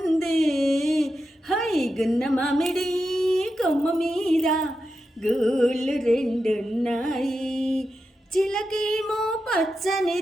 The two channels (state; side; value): normal; both; correlation 0.89